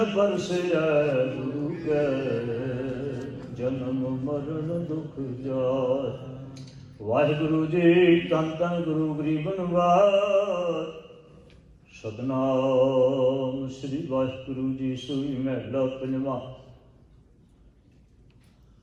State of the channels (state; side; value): identical; both; correlation 1.00